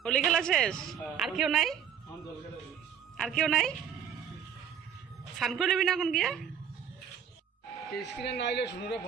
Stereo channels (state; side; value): quieter; left; 8.0 dB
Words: হোলি খেলা শেষ? আর কেউ নাই? আর কেউ নাই? স্নান করে নেবি না এখন গিয়া? স্ক্রিনে না আইলে শুনুরে